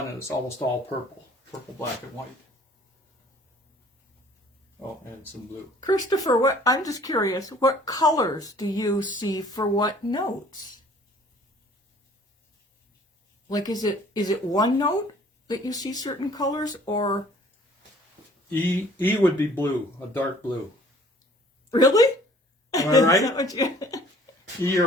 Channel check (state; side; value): normal; both; correlation 0.54